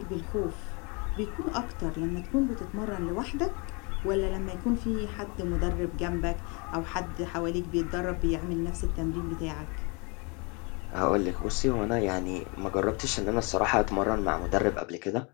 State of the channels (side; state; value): right; quieter; 31.4 dB